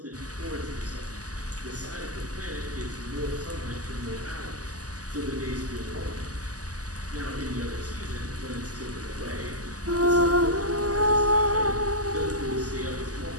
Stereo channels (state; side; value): late; left; 0.67 ms